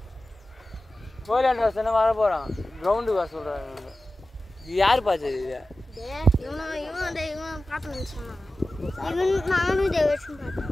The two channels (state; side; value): normal; both; correlation 0.95